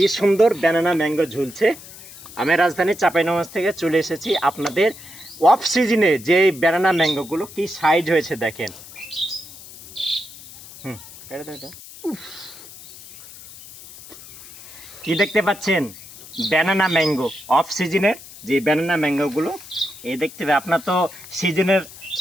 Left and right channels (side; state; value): left; noise; hiss, 17 dB below the sound